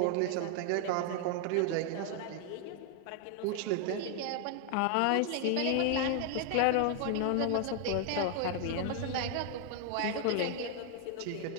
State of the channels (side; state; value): both; different; correlation 0.00